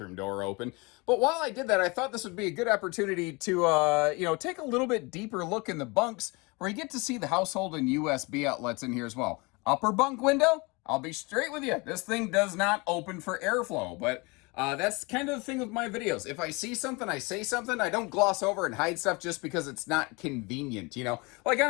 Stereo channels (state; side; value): quieter; right; 26.9 dB